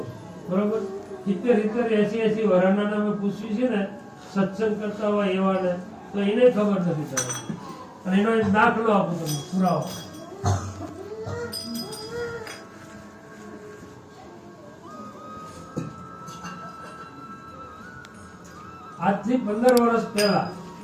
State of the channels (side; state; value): both; identical; correlation 1.00